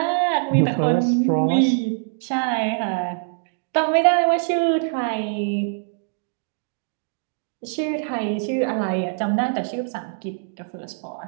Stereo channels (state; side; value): silent; left; digital silence